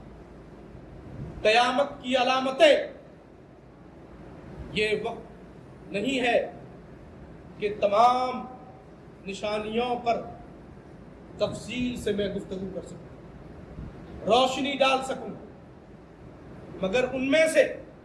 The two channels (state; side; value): identical; both; correlation 1.00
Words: قیامت کی علامتیں۔ یہ وقت نہیں ہے کہ تمام نشانیوں پر تفصیل سے میں گفتگو کر سکوں، روشنی ڈال سکوں، مگر ان میں سے